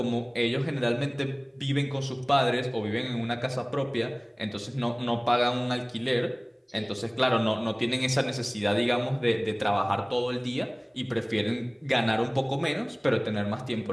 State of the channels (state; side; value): identical; both; correlation 1.00